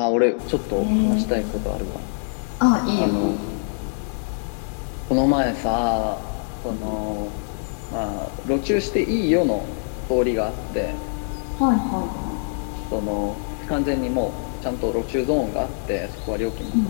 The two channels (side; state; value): right; silent; digital silence